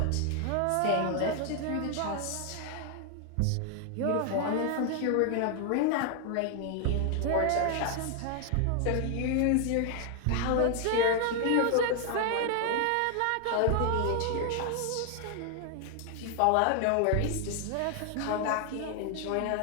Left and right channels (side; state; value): both; different; correlation 0.00